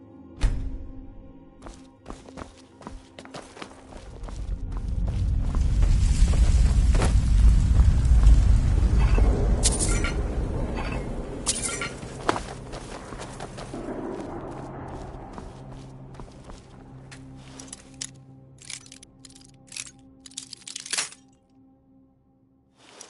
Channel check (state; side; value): identical; both; correlation 1.00